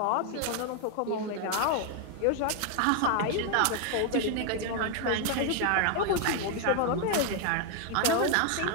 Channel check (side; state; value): both; different; correlation 0.00